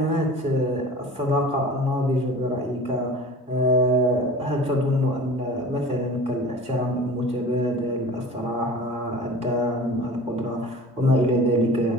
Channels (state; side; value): normal; both; correlation 0.40